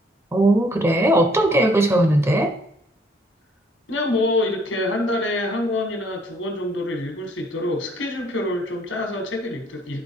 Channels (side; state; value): both; normal; correlation 0.64